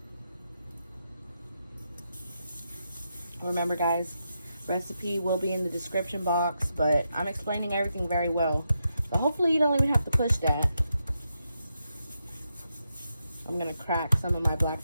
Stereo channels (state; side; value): inverted; both; correlation -0.84